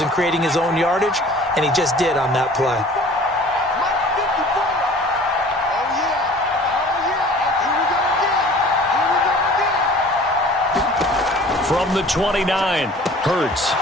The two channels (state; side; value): normal; both; correlation 0.47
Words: and creating his own yardage, and he just did on that play. From the 29, Hurts.